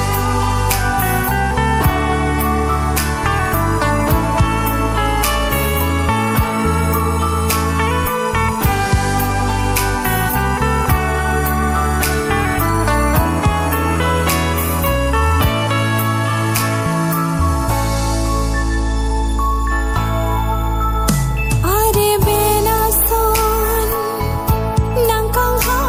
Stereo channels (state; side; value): identical; both; correlation 1.00